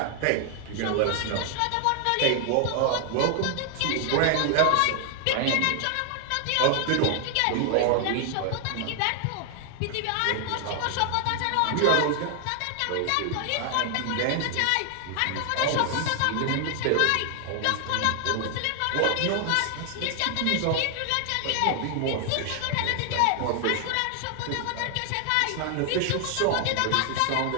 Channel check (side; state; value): both; different; correlation 0.00